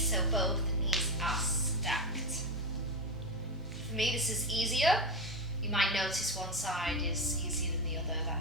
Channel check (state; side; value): normal; both; correlation 0.16